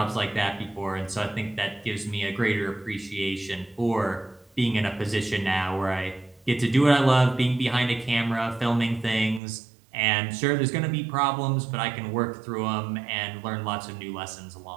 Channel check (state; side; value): drops out; left; at 9.4 s